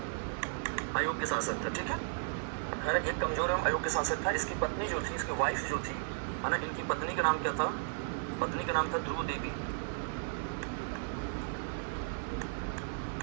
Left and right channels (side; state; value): left; silent; digital silence